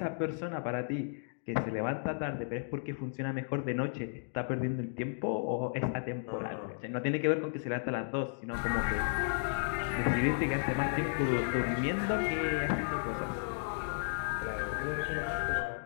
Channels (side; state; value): right; silent; digital silence